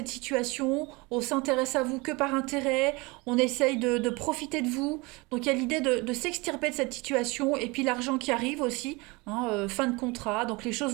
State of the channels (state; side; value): quieter; left; 25.4 dB